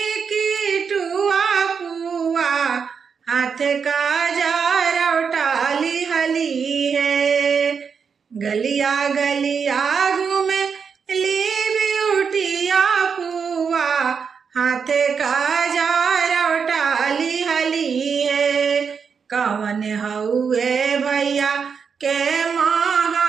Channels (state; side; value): quieter; left; 6.2 dB